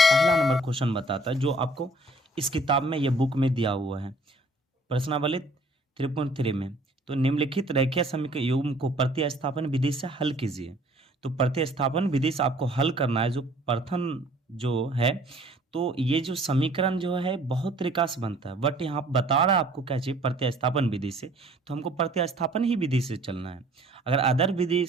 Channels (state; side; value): normal; both; correlation 0.56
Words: पहला नंबर क्वेश्चन बताता है जो आपको इस किताब में, ये बुक में दिया हुआ है प्रश्नावली 3.3 में। तो निम्नलिखित रेखीय समीकरण युग्म को प्रतिस्थापन विधि से हल कीजिए। तो प्रतिस्थापन विधि से आपको हल करना है। जो प्रथम जो है, तो ये जो समीकरण जो है बहुत तरीका से बनता है, बट यहाँ बता रहा है आपको क्या चाहिए, प्रतिस्थापन विधि से। तो हमको प्रतिस्थापन ही विधि से चलना है। अगर अदर विधि